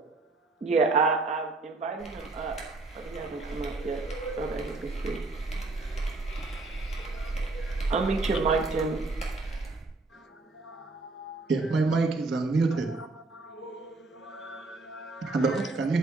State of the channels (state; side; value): quieter; left; 3.4 dB